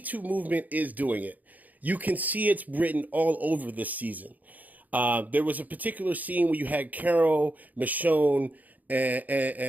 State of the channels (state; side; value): late; left; 0.080 ms